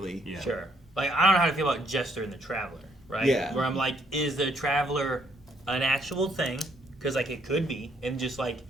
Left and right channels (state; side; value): normal; both; correlation 0.70